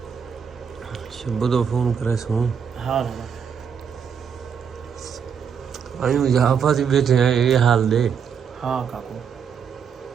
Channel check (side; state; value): left; quieter; 7.1 dB